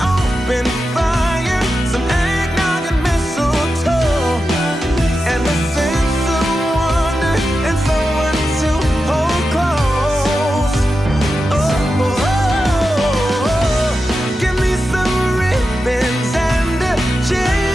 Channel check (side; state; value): both; normal; correlation 0.90